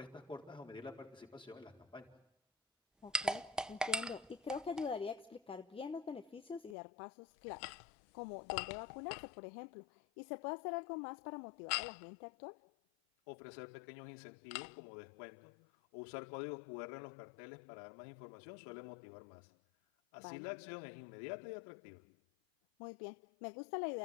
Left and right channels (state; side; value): drops out; right; at 6.8 s